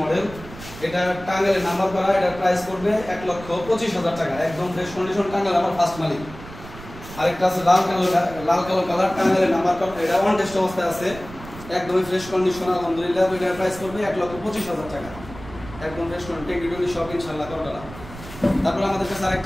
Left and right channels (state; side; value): noise; right; rumble, 15 dB below the sound